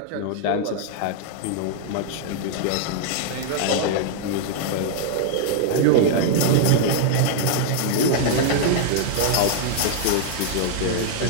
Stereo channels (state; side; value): different; both; correlation 0.00